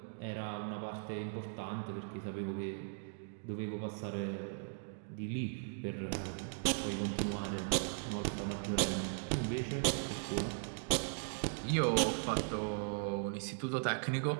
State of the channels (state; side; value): silent; left; digital silence